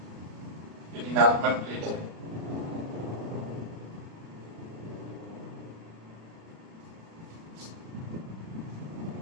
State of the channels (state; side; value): late; left; 36 ms